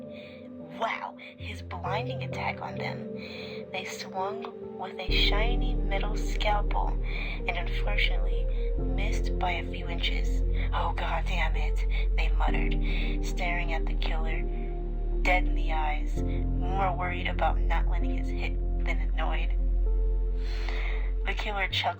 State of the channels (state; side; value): identical; both; correlation 1.00